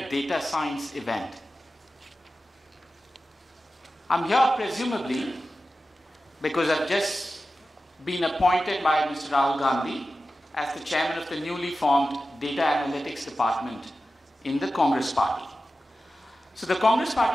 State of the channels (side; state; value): both; normal; correlation 0.94